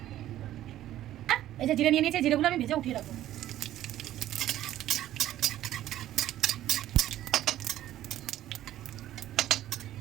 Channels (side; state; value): left; quieter; 13.2 dB